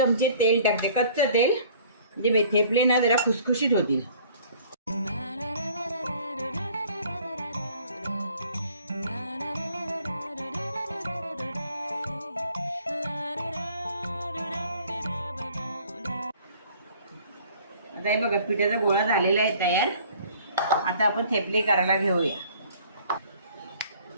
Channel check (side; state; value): both; inverted; correlation -0.53